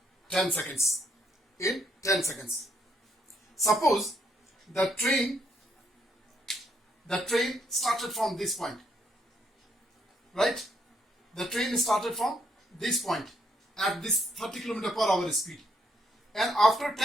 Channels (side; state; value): both; normal; correlation 0.73